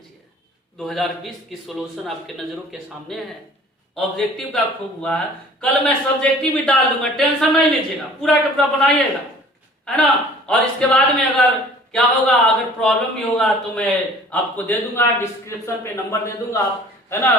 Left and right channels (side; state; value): both; normal; correlation 0.49